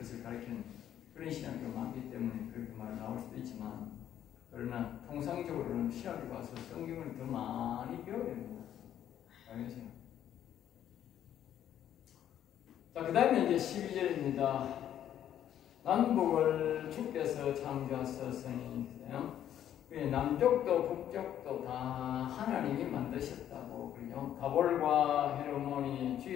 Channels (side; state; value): right; quieter; 10.7 dB